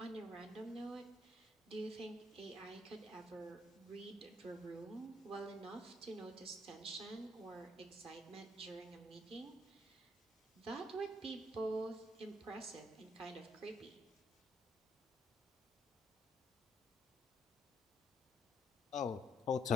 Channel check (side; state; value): both; normal; correlation 0.72